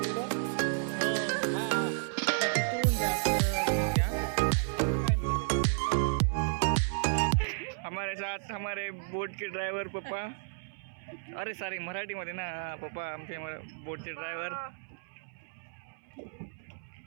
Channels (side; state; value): left; silent; 56 dB below the other